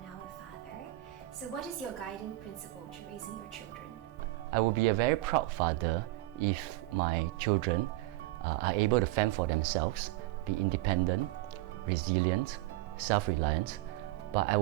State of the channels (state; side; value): quieter; left; 18.2 dB